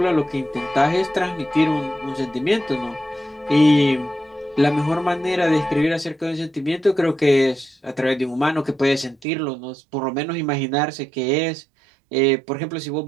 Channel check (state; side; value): drops out; left; at 9.2 s